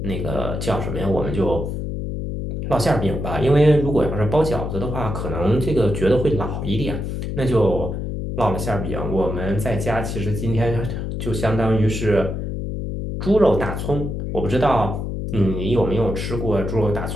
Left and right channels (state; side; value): noise; left; hum, 4 dB below the sound